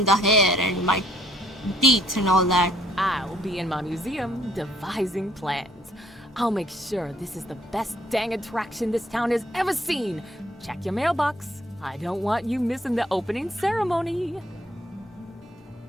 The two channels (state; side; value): normal; both; correlation 0.65